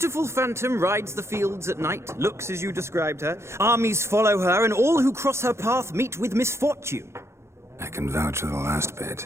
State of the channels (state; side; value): late; left; 0.13 ms